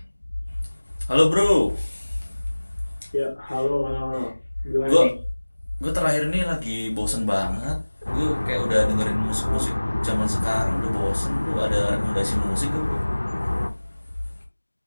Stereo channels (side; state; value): both; inverted; correlation -1.00